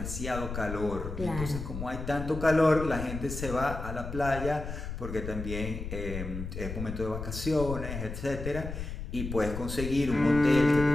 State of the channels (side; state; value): left; noise; rumble, 7 dB below the sound